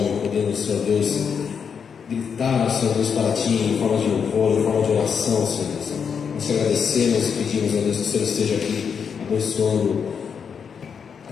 podendo, Senhor Deus, gritar, Senhor Deus, para Ti em forma de louvor, em forma de oração, Senhor Deus. Nós te agradecemos e pedimos, Senhor Deus, que o Senhor esteja aqui abençoando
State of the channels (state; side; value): quieter; right; 6.7 dB